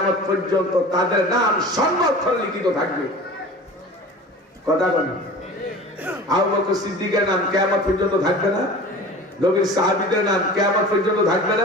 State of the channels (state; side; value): normal; both; correlation 0.38